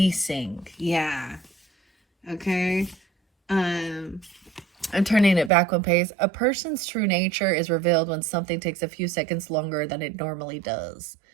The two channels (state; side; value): drops out; left; at 5.5 s